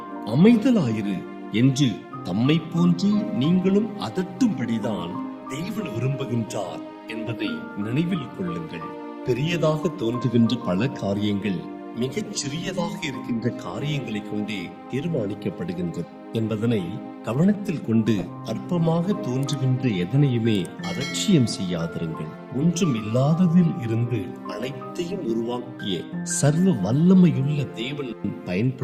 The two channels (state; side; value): identical; both; correlation 1.00